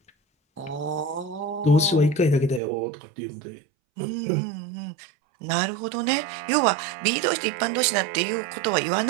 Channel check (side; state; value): left; drops out; at 2.6 s